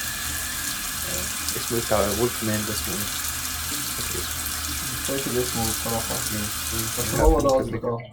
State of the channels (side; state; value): both; identical; correlation 1.00